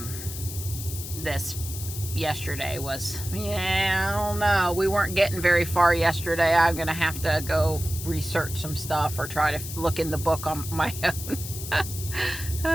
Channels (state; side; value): noise; left; hiss, 9 dB below the sound